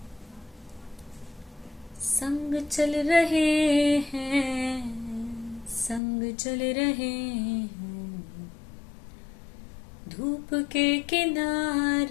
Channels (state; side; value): drops out; right; at 6.0 s